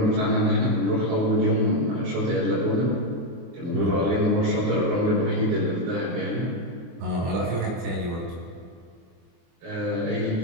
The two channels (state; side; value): late; left; 23 ms